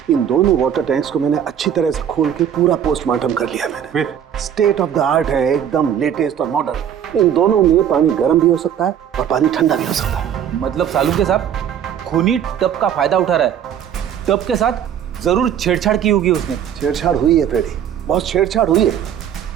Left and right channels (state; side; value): quieter; left; 9.2 dB